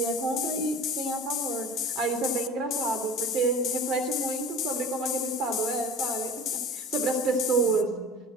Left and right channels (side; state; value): both; normal; correlation 0.39